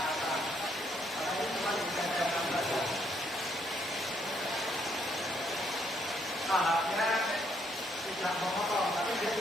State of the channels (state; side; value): normal; both; correlation 0.71